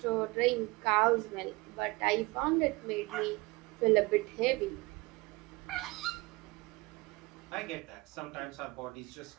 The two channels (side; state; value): left; quieter; 24.1 dB